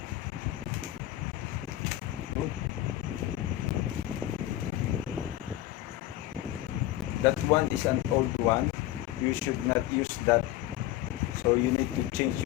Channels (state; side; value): quieter; right; 14.5 dB